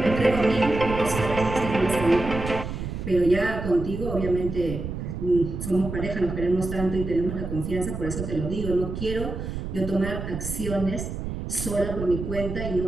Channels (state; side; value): noise; right; rumble, 6 dB below the sound